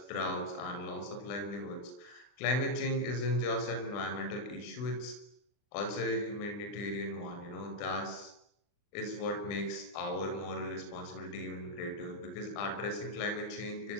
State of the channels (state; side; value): late; right; 39 ms